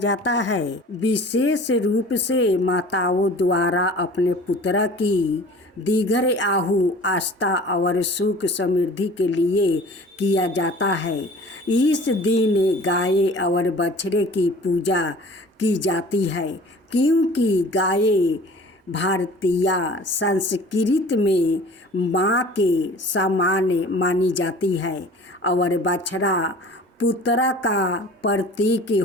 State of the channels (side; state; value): both; normal; correlation 0.45